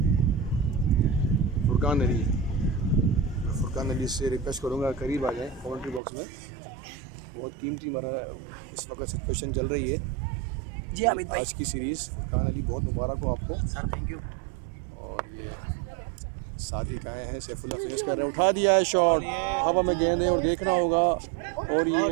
फुरकान अली, मैं फुरकान अली से रिक्वेस्ट करूँगा करीब आ जाएँ कमेंट्री बॉक्स में। बहुत कीमती मरा इस वक्त सिचुएशन चल रही है जी हामिद भाई। आज की सीरीज़। फुरकान अली बहुत मुबारक हो आपको सर, थैंक यू। और ये सादिक आए हैं, सैफुल्लाह फेस कर रहे हैं। उठा दिया है शॉट, हवा में गेंद है और देखना होगा। और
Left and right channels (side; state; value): left; drops out; at 6.0 s